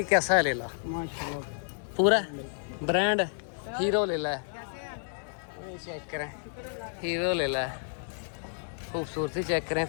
कैसा है लेला? माशाल्लाह पूरा ब्रांड हीरो लेला है। चेक करें, हीरो लेला है, खूबसूरती चेक करें,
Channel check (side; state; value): right; silent; digital silence